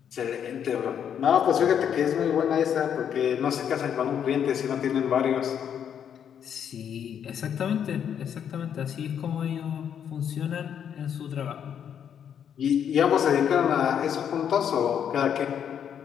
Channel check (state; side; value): quieter; right; 8.6 dB